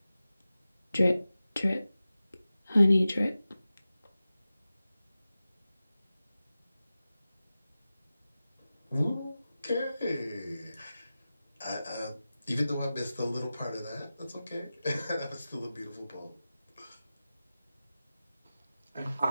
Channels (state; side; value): inverted; both; correlation -0.95